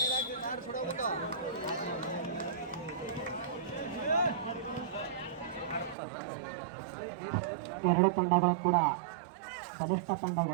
ಎರಡು ತಂಡಗಳು ಕೂಡ ಬಲಿಷ್ಠ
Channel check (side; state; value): left; drops out; at 6.0 s